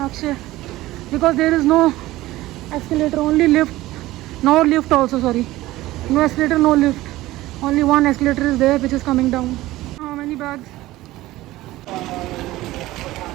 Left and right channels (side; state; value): left; quieter; 17.2 dB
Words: because there is no escalator, only lift. No lift also, sorry. No escalator, no lift. Only one escalator is there which is coming down. How many bags?